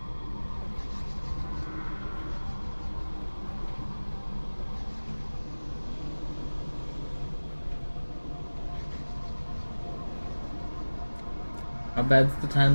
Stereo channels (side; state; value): both; inverted; correlation -1.00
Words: How bad's the